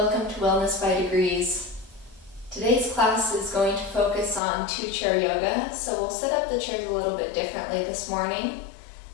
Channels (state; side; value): drops out; right; at 4.4 s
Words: to Wellness by Degrees. Today's class is going to focus on two-chair yoga, so we'll set up the chairs a little bit differently this morning.